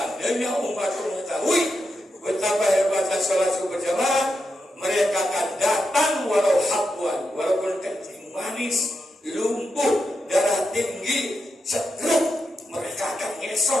umat mengetahui betapa hebatnya sholat subuh berjamaah, mereka akan datang walau habwan, walaupun kencing manis, lumpuh, darah tinggi, setruk, mereka akan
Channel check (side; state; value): both; normal; correlation 0.86